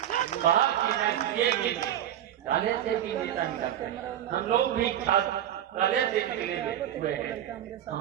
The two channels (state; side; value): quieter; left; 11.2 dB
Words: बहाल किए काले से भी नेता निकलते हैं। हम लोग भी छात्र काले से निकले हुए हैं।